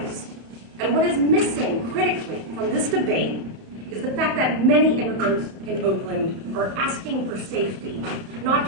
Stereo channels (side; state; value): left; late; 31 ms